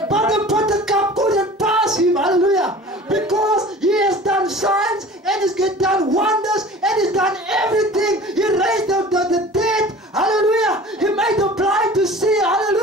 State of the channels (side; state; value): both; normal; correlation 0.42